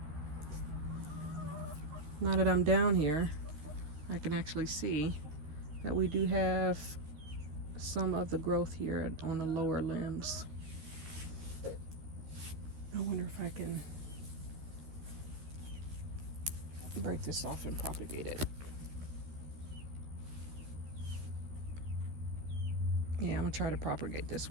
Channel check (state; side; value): late; left; 13 ms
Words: Now that I'm down here, I can actually see that we do have some of the growth here on the lower limbs. I wonder if I can break this off and propagate it. Yeah, I'm gonna try to propagate this